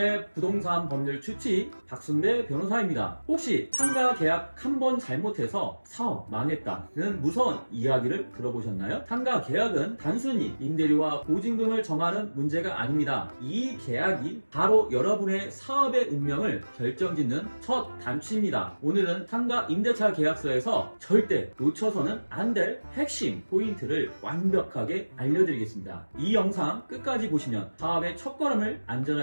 부동산 법률 추치 박순배 변호사입니다. 혹시 상가 계약 한 번 잘못해서 사업 망했다는 무서운 이야기를 들어보셨나요? 상가 계약은 단순히 임대료와 보증금을 정하는 문제가 아닙니다. 이 계약이 바로 여러분의 사업의 운명을 결정짓는 첫 단추입니다. 오늘은 상가 임대차 계약서에서 절대 놓쳐서는 안 될 핵심 포인트를 완벽하게 알려드리겠습니다. 이 영상 끝까지 보시면 사업의 첫걸음을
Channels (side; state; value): both; inverted; correlation -1.00